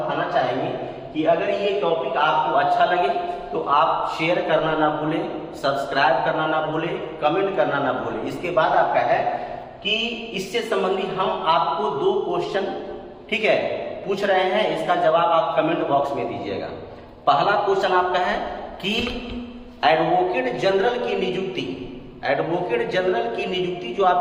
चाहेंगे कि अगर ये टॉपिक आपको अच्छा लगे तो आप शेयर करना ना भूलें, सब्सक्राइब करना ना भूलें, कमेंट करना ना भूलें। इसके बाद आपका है कि इससे संबंधित हम आपको 2 क्वेश्चन, ठीक है, पूछ रहे हैं, इसका जवाब आप कमेंट बॉक्स में दीजिएगा। पहला क्वेश्चन आपका है कि एडवोकेट जनरल की नियुक्ति, एडवोकेट जनरल की नियुक्ति जो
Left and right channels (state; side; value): identical; both; correlation 1.00